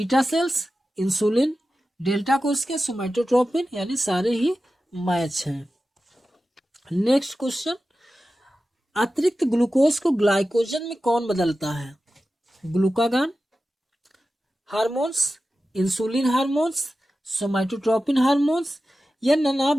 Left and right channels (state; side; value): normal; both; correlation 0.93